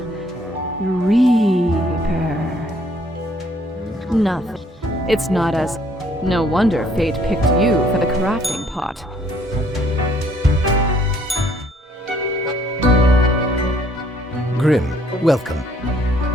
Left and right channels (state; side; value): normal; both; correlation 0.63